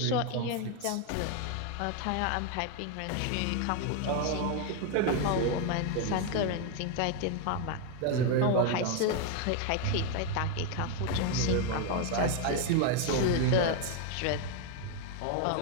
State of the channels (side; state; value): both; different; correlation 0.01